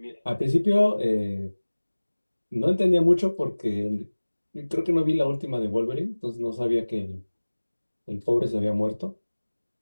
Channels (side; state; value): both; inverted; correlation -1.00